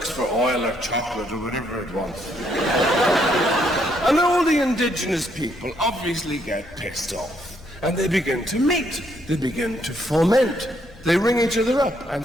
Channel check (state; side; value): normal; both; correlation 0.72